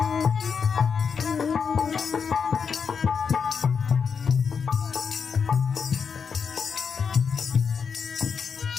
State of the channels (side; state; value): right; quieter; 6.2 dB